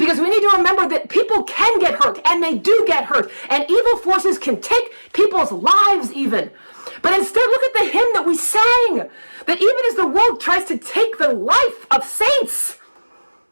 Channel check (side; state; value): both; inverted; correlation -1.00